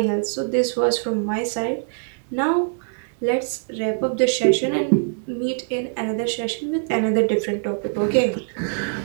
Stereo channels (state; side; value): silent; left; 63 dB below the other